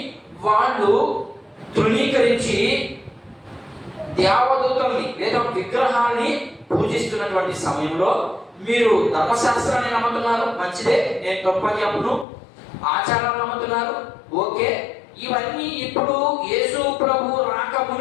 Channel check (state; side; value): drops out; right; at 12.2 s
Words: వాళ్ళు తృణీకరించి దేవదూతల్ని లేదా విగ్రహాన్ని పూజిస్తున్నటువంటి సమయంలో మీరు ధర్మశాస్త్రాన్ని నమ్ముతున్నారు, మంచిదే, నేను తప్పని చెప్పను. ఆచారాలు నమ్ముతున్నారు, ఓకే. ఇవన్నీ ఇప్పుడు యేసు ప్రభు రాక